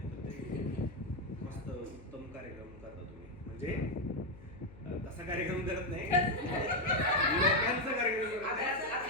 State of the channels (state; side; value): noise; left; hum, 19 dB below the sound